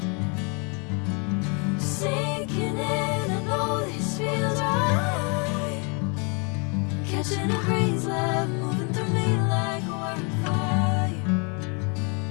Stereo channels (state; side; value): quieter; right; 34.7 dB